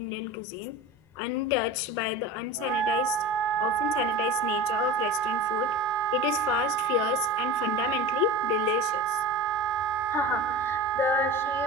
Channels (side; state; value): both; normal; correlation 0.32